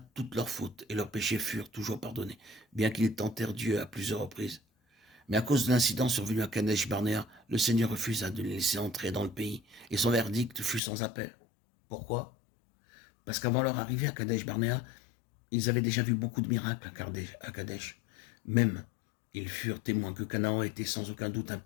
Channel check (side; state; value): right; drops out; at 10.8 s